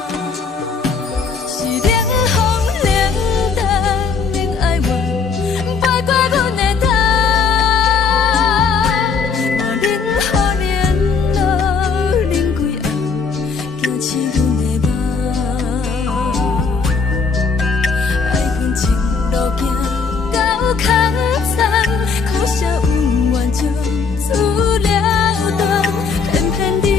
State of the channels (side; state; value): right; quieter; 5.1 dB